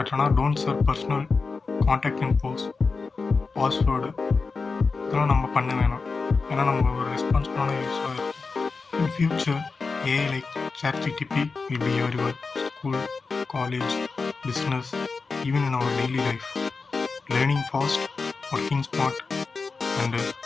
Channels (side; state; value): right; quieter; 4.4 dB